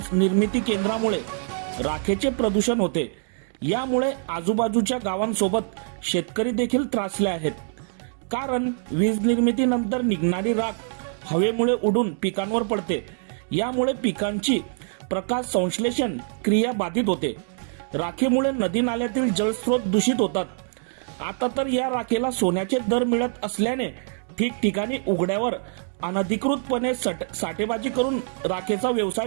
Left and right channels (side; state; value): left; silent; 62 dB below the other